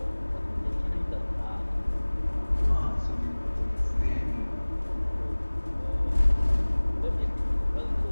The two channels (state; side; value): inverted; both; correlation -1.00